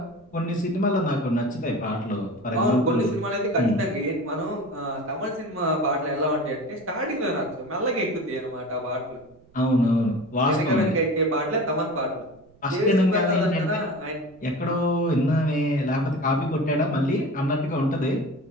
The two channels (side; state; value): right; noise; rumble, 28 dB below the sound